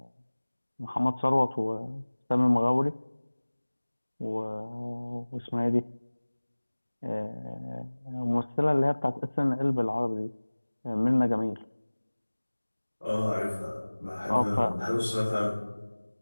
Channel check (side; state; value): both; inverted; correlation -1.00